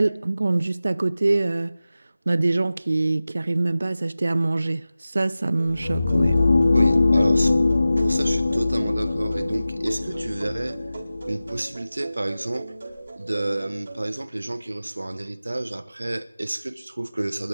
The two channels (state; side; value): inverted; both; correlation -0.95